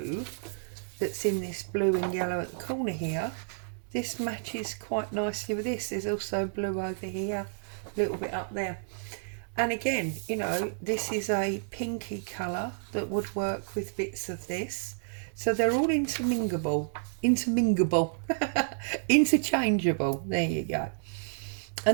that's in this blue and yellow at the corner here, this matches quite nicely with this. There's also blue over here, a little bit up there. And again, you know, this is a pinky colour that would work with bits of this. So they're all interminglable, interchangeable. There you go.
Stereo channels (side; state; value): left; silent; digital silence